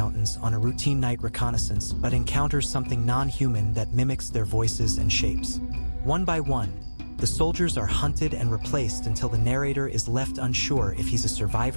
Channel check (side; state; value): both; inverted; correlation -1.00